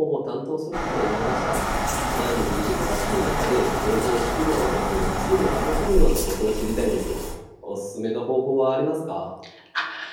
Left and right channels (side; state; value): both; identical; correlation 1.00